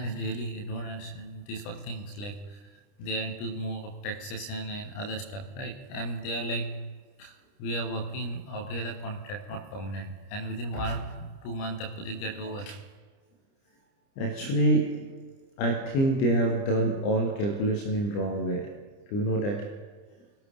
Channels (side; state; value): right; late; 30 ms